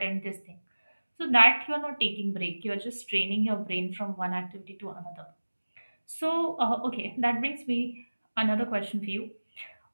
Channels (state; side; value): inverted; both; correlation -1.00